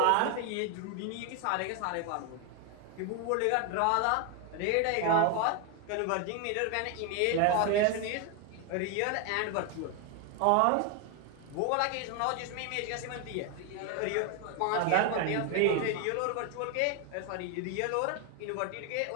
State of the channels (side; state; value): both; different; correlation 0.01